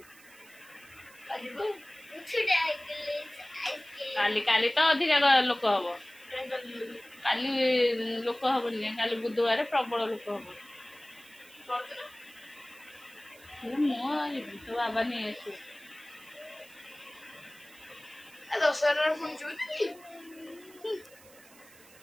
କାଲି ତ ଅଧିକା ଲୋକ ହବ। କାଲି ଲୋକ ହବନି, କାଲି ବୁଧବାର ପ୍ରବଳ ଲୋକ ହବ। ମୁଁ ଯିବି, ତୋ ବାବା ନେଇ ଆସିବୁ।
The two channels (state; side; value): noise; right; hiss, 23 dB below the sound